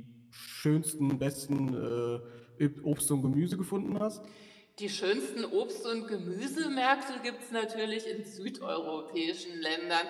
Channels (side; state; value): both; identical; correlation 1.00